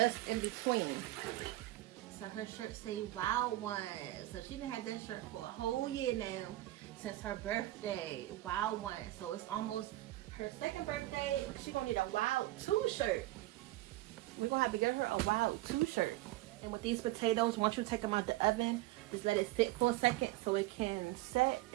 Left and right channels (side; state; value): left; quieter; 17.2 dB